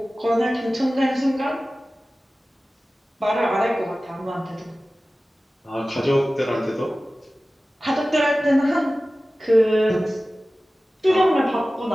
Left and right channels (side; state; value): both; normal; correlation 0.96